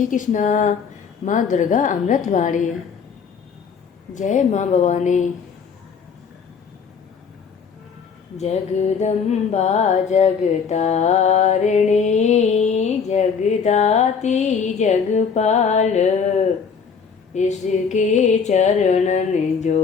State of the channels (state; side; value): quieter; right; 6.2 dB